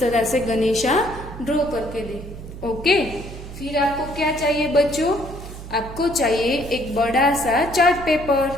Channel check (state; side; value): noise; right; hum, 12 dB below the sound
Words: से गणेशा ड्रॉ करके दे। ओके, फिर आपको क्या चाहिए बच्चों, आपको चाहिए एक बड़ा सा चार्ट